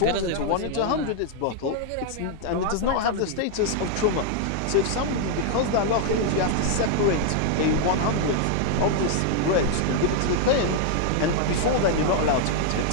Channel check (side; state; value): both; different; correlation 0.00